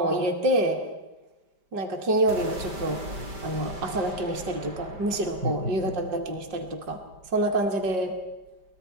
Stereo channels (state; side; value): late; left; 5.1 ms